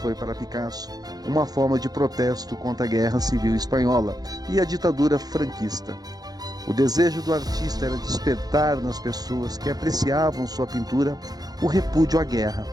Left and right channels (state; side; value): late; left; 0.19 ms